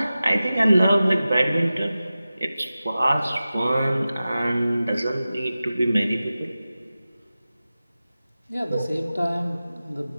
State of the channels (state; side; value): inverted; both; correlation -0.95